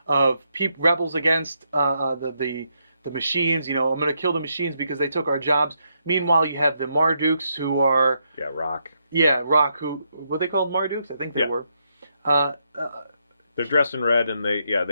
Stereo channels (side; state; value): both; inverted; correlation -0.79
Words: of rebels against the machines, I'm going to kill the machines because they took our jobs. Meanwhile, you have the Mardukes who are... Yeah, Rock. Yeah, Rock, who... Were they called Mardukes? I think they were. They're dressed in red, and